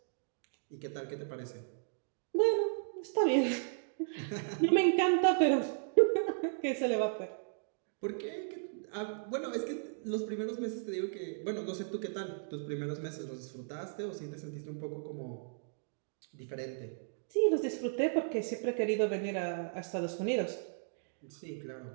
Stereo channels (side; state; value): left; silent; digital silence